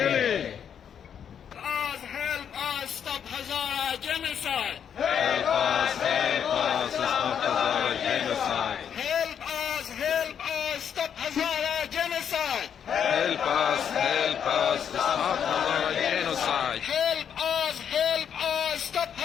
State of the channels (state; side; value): quieter; right; 8.3 dB